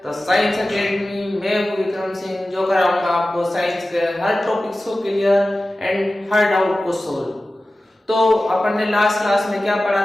the science academy. मैं हूं विक्रम सिंह, जो कराऊंगा आपको साइंस के हर टॉपिक्स को क्लियर एंड हर डाउट को सोल्व। तो अपन ने लास्ट क्लास में क्या पढ़ा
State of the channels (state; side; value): normal; both; correlation 0.96